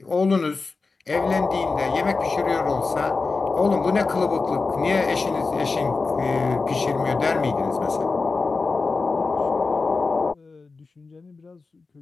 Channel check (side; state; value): right; quieter; 4.1 dB